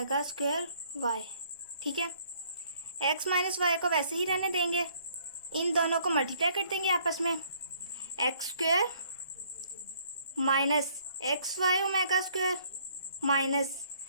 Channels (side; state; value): both; inverted; correlation -0.62